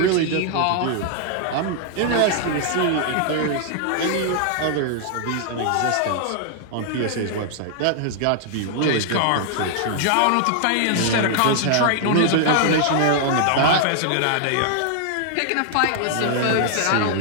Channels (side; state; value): both; different; correlation -0.01